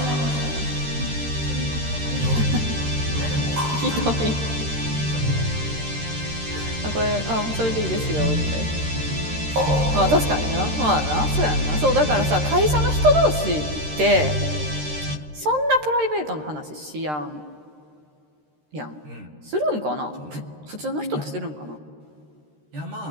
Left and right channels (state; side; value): late; left; 13 ms